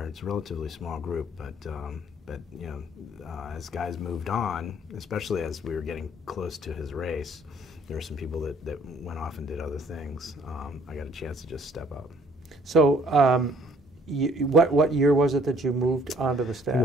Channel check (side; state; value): both; normal; correlation 0.59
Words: It's a relatively small group, but as guys moved on, especially as we were getting close to his race, there were some people that went off and did other things. I got a chance to just step up. So what year was it that you moved onto the staff? It